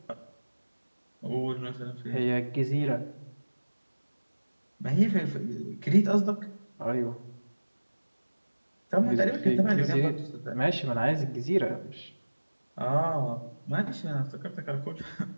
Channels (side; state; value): both; inverted; correlation -1.00